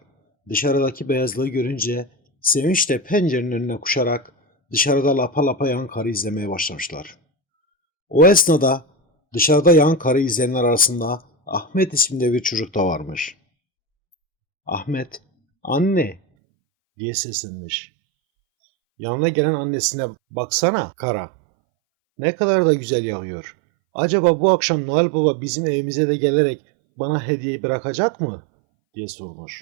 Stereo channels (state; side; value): drops out; left; at 16.2 s